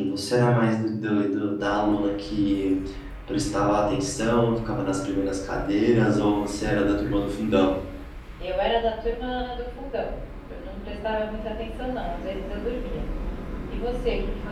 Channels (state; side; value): identical; both; correlation 1.00